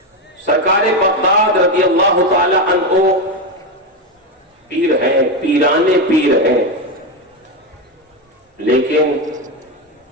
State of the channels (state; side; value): normal; both; correlation 0.12